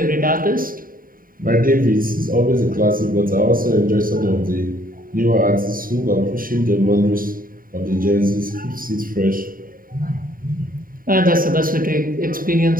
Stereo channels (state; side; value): late; left; 0.41 ms